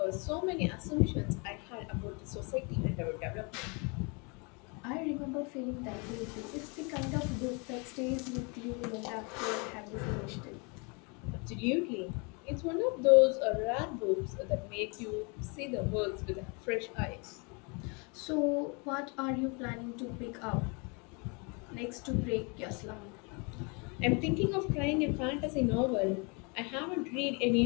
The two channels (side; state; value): right; quieter; 32.3 dB